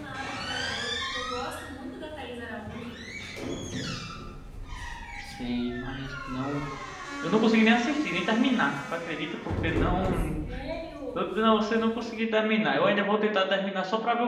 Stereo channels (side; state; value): both; identical; correlation 1.00